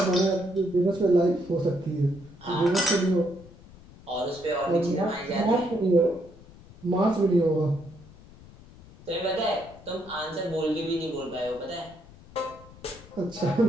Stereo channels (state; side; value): noise; left; rumble, 21 dB below the sound